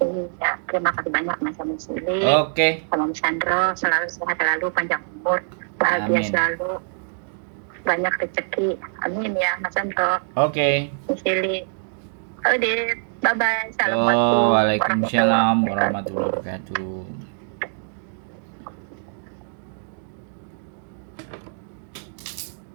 Iya, terima kasih banyak Mas Yuli. Sama Mas Sandro, selalu sehat selalu, panjang umur, bahagia selalu, banyak rezeki. Amin ya Mas Sandro. Mas Yuli. Udah, bye bye. Assalamualaikum. Waalaikumsalam warahmatullahi wabarakatuh.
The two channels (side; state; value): left; silent; digital silence